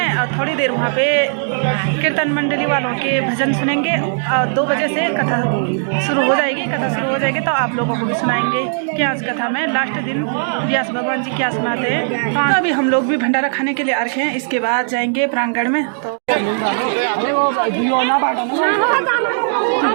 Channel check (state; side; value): silent; left; digital silence